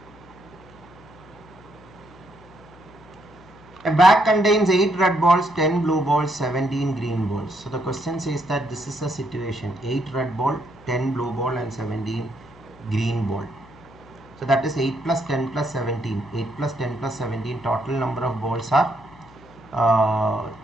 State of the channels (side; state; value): left; noise; hum, 23 dB below the sound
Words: A bag contains 8 red balls, 10 blue balls, 17 green balls. So the question says that this is a situation: 8 red ball, 10 blue ball and 17 green ball. So that is 8 plus 10 plus 17. 8 plus 10 plus 17, total number of balls are